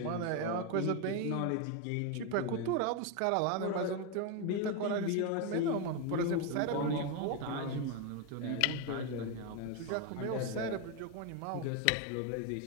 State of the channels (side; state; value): both; different; correlation 0.02